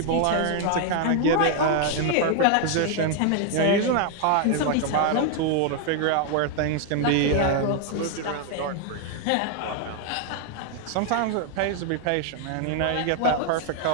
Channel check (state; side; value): different; both; correlation 0.00